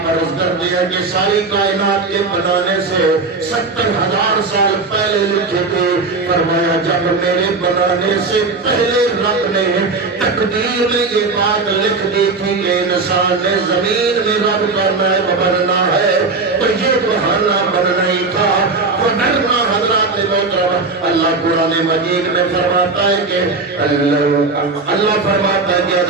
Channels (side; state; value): left; quieter; 3.9 dB